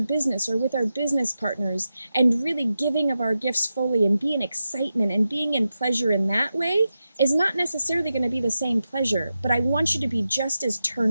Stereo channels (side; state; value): both; inverted; correlation -0.90